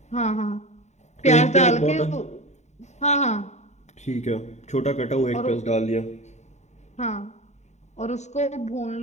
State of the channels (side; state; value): right; late; 0.33 ms